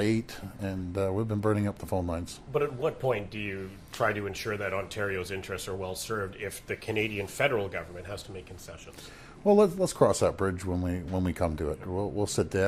and we've been burning up the phone lines. But at what point do you try to ensure that Ontario's interests are well served if the Canadian federal government has to make concessions? Well, let's cross that bridge when we come to it. We'll sit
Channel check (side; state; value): both; identical; correlation 1.00